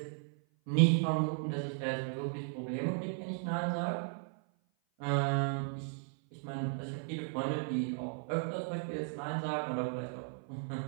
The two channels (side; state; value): left; silent; 54 dB below the other